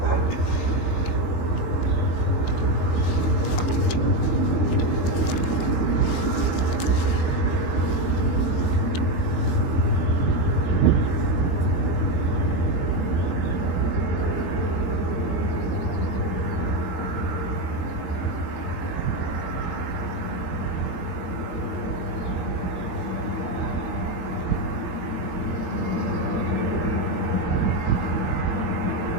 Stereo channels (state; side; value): late; right; 22 ms